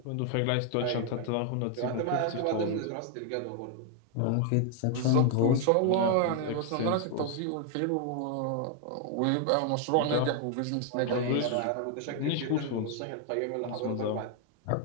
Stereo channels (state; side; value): different; both; correlation 0.00